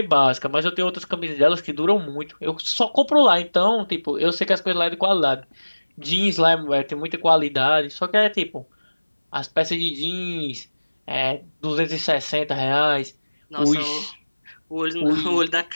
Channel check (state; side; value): inverted; both; correlation -1.00